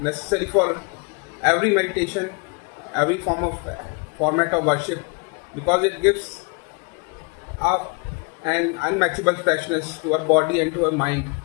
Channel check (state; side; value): quieter; right; 31.4 dB